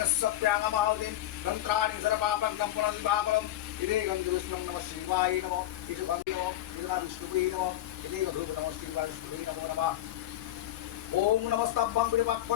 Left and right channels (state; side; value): quieter; right; 13.9 dB